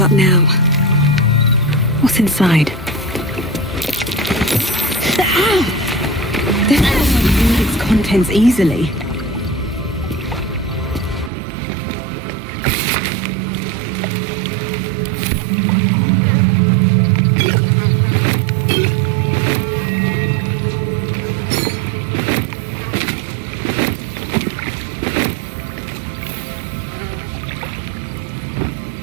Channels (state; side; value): drops out; left; at 11.3 s